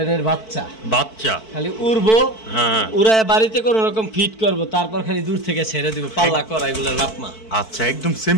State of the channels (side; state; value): right; late; 4.5 ms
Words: বাচ্চা খালি উড়বো হ্যাঁ উড়ায় বাড়িতে কোন রকম ফিট করব তারপর খালি দূর থেকে ছেড়ে দিব পাল্লা করা এগুলোর বাপমা আচ্ছা একদম সেম